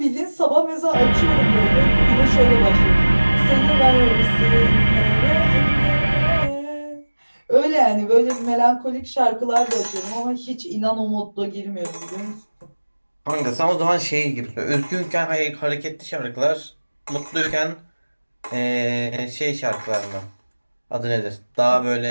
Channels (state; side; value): inverted; both; correlation -1.00